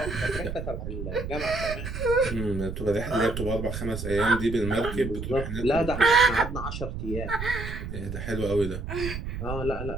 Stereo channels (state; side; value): noise; right; rumble, 6 dB below the sound